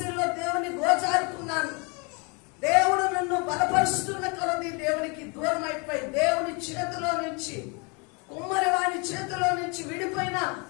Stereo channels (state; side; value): quieter; right; 32.0 dB